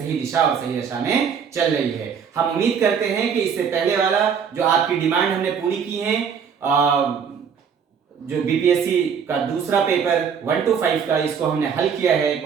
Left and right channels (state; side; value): quieter; left; 6.9 dB